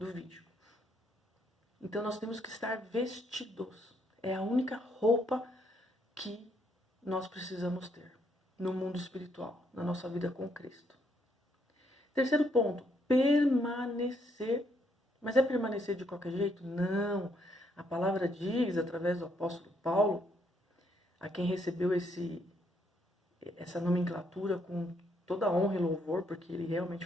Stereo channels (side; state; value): both; normal; correlation 0.72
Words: Então nós temos que estar vestidos. É a única roupa que nós precisamos ter no mundo espiritual, na nossa vida com Cristo. Terceiro ponto, permanecer. Mas é permanecer de qualquer jeito? Não. A palavra diz, através do apóstolo Paulo, a quem recebeu essa nomenclatura com toda a honra e louvor, porque ele realmente